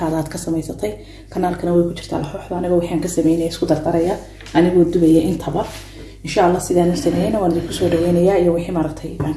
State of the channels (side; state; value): both; identical; correlation 1.00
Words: aad ka samaysatay kanaalkana way ku jirtaa laxooxda aniga waxaan ka sameeyay isku dardaraya anigu dubaya intaba insha Allah sidaan sameeyay waan idin ku soo dhaweynayaa iyo wixii maartay aan